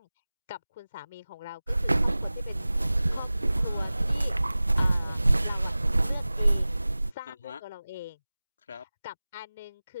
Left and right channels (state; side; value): inverted; both; correlation -0.98